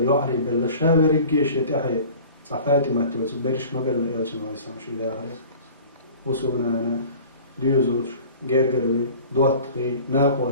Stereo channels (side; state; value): both; inverted; correlation -0.43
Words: يعري بلا شاور الجيش يتحي صفاتي ما تيوتك بريش ما بلا يلش نويسوس شي داغر وسونا ديزور جرجروي دوتقي